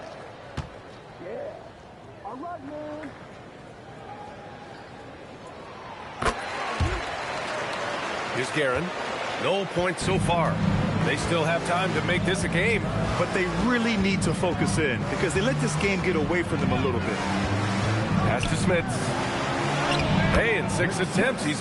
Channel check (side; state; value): both; identical; correlation 1.00